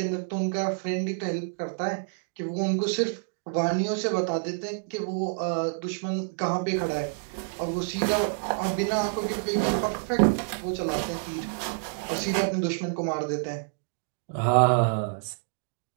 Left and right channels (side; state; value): left; silent; digital silence